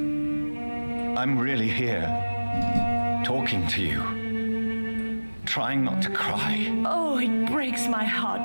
I'm really here, talking to you, trying not to cry. Oh, it breaks my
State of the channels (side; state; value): both; inverted; correlation -1.00